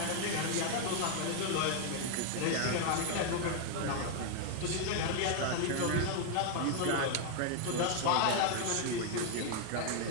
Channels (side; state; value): both; different; correlation 0.00